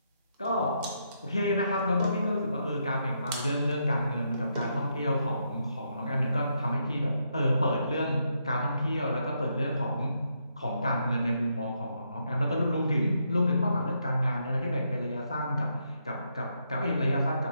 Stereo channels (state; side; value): inverted; both; correlation -0.78